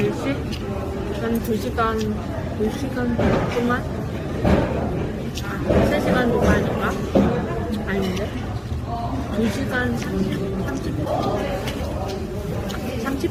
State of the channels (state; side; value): identical; both; correlation 1.00